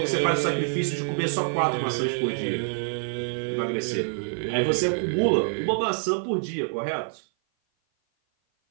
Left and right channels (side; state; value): left; silent; 56 dB below the other